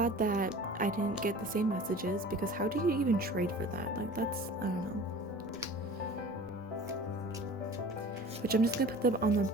that I didn't get the same messages, because how do you even trade for that? Like, that's, I don't know. Which I'm just gonna put them on the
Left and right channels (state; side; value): normal; both; correlation 0.41